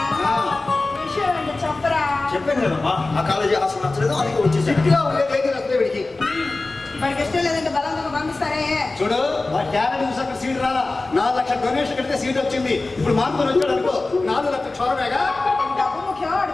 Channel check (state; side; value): quieter; right; 3.3 dB